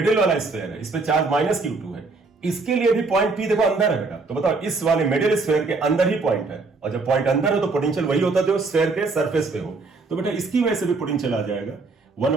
वाला स्फेयर है, इस पे चार्ज माइनस Q2 है, इसके लिए भी पॉइंट P देखो अंदर है बेटा, तो बताओ इस वाले मिडिल स्फेयर के अंदर ही पॉइंट है, और जब पॉइंट अंदर हो तो पोटेंशियल वही होता है जो स्फेयर के सरफेस पे हो, तो बेटा इसकी वजह से भी पोटेंशियल आ जाएगा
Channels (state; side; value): quieter; left; 3.9 dB